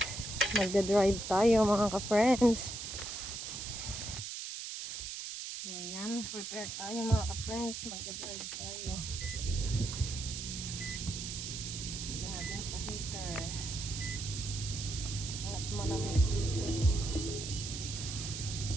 Magda-drive tayo mga ka-friends. So, yan. Prepare tayo mga ka-friends. Magda-drive tayo. Lagyan natin sa heater. At malamig dito.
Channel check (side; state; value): right; noise; hiss, 6 dB below the sound